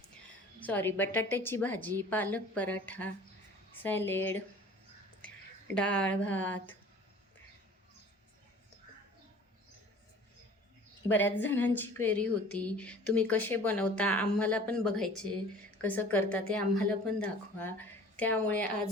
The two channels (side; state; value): both; normal; correlation 0.46